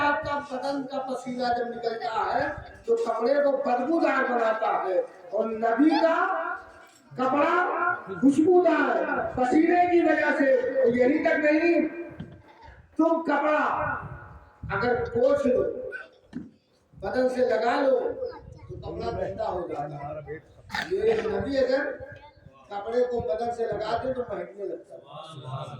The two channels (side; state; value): both; identical; correlation 1.00